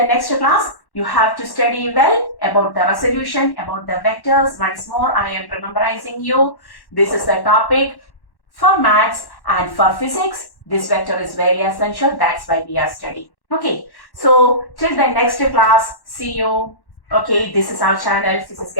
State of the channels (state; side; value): late; right; 1.1 ms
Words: next class, you have to study well about the resolution, about the vectors. Once more, I am memorizing you. This is the topic for maths and for physics. This vector is very essential. That's why we are studying. Okay. So till the next class, see you. Okay, this is our channel. This is